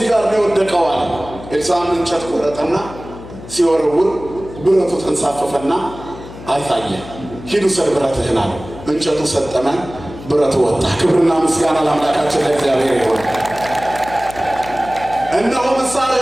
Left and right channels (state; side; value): noise; left; hum, 15 dB below the sound